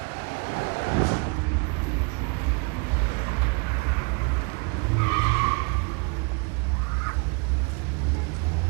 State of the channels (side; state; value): left; quieter; 31.8 dB